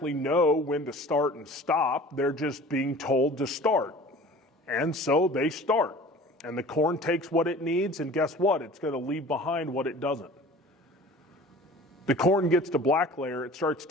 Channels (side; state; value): both; normal; correlation 0.44